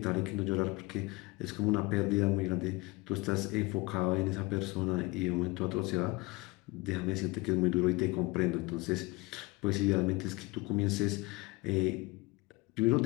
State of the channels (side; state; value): right; quieter; 24.0 dB